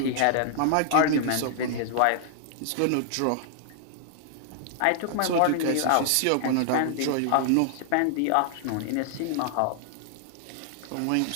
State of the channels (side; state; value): both; different; correlation -0.01